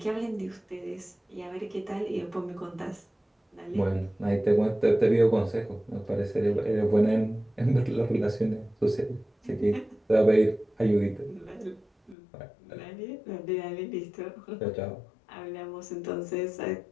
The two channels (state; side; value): drops out; right; at 12.2 s